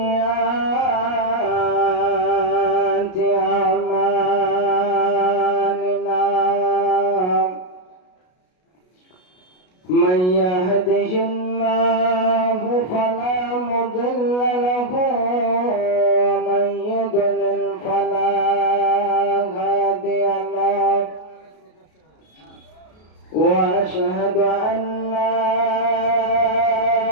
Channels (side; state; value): right; late; 33 ms